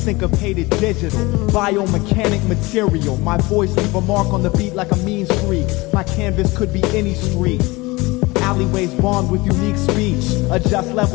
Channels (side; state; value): right; quieter; 22.7 dB